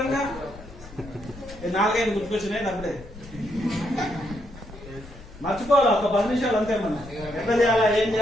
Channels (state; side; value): noise; left; rumble, 16 dB below the sound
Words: గా 4-5 గుర్తుకొచ్చినాయి. అప్పుడే మర్చిపోవాలి, ఒక 10 నిమిషాలు అంతే. మనం ఎట్లా చేయాలా, ఏం